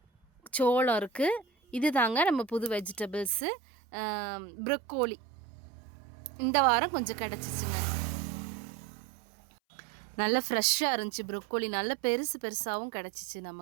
சோளம் இருக்குது. இது தாங்க நம்ம புது வெஜிடபிள்ஸு. ப்ரொக்கோலி இந்த வாரம் கொஞ்சம் கிடச்சிச்சுங்க. நல்லா ஃப்ரெஷ்ஷாக இருந்துச்சு. ப்ரொக்கோலி நல்ல பெருசாகவும் கிடச்சிச்சு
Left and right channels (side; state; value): left; drops out; at 3.5 s